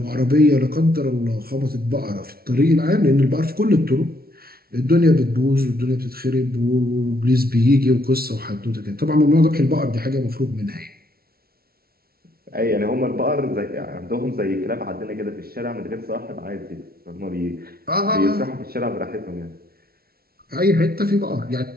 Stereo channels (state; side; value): late; left; 0.44 ms